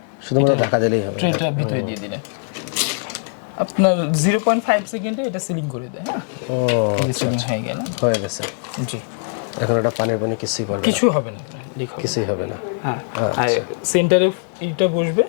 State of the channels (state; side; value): silent; right; 57 dB below the other